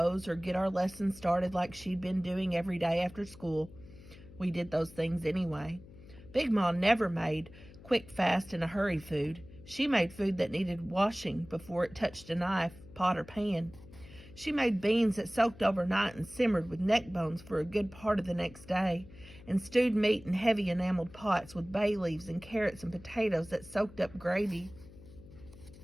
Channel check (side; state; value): left; noise; hum, 20 dB below the sound